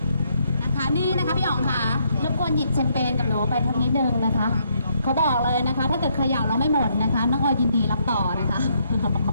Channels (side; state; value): both; inverted; correlation -0.73